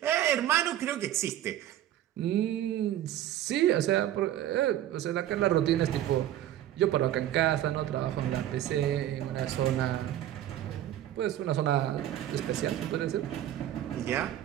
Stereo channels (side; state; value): left; quieter; 12.3 dB